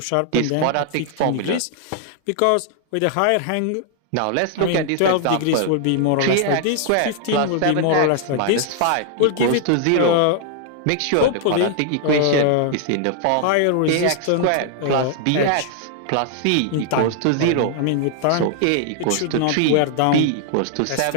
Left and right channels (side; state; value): both; different; correlation 0.00